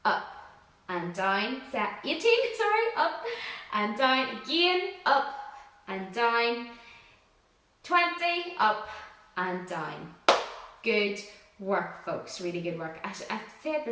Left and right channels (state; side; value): identical; both; correlation 1.00